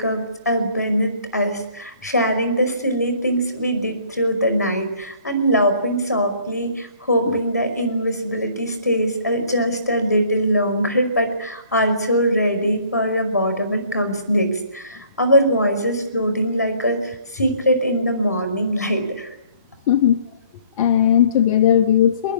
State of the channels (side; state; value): both; inverted; correlation -0.58